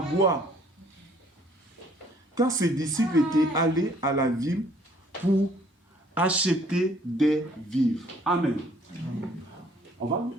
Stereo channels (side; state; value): both; normal; correlation 0.60